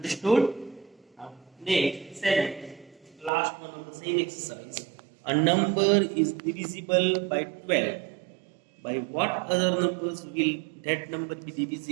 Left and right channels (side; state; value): left; drops out; at 3.3 s